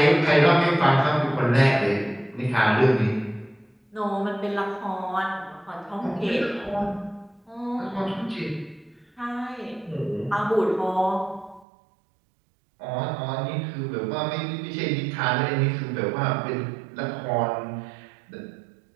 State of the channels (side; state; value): left; drops out; at 11.7 s